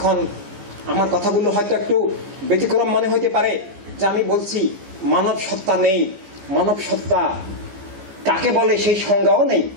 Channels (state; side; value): late; left; 14 ms